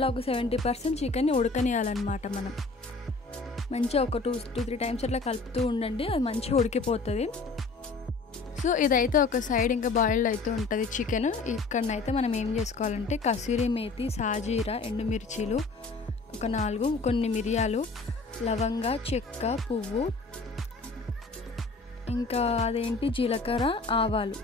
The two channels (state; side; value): quieter; right; 3.8 dB